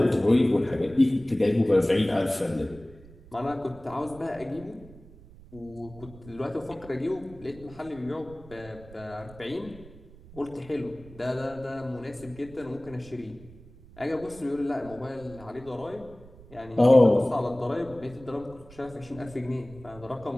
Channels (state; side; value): noise; right; rumble, 20 dB below the sound